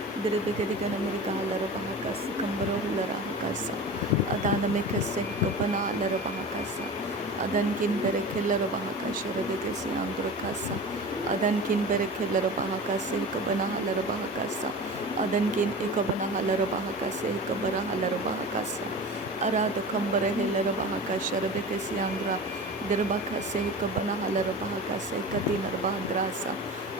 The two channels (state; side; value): normal; both; correlation 0.33